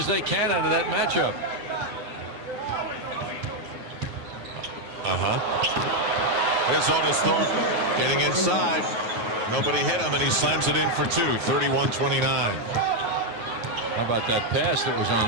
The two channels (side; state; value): left; late; 9.3 ms